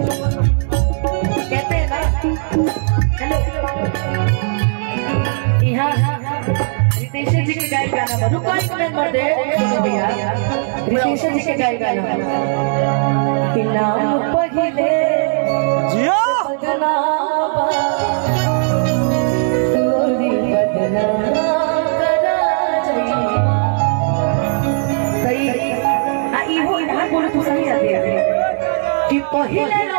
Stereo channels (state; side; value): silent; left; 68 dB below the other